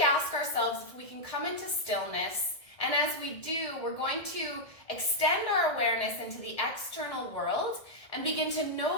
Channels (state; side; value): late; right; 1.7 ms